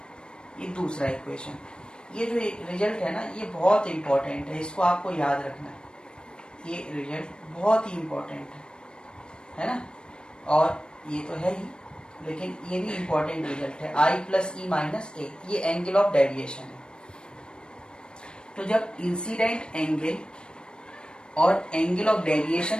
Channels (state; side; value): late; right; 0.052 ms